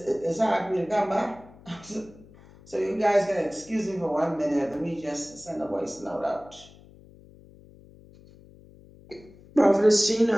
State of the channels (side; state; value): left; noise; hum, 23 dB below the sound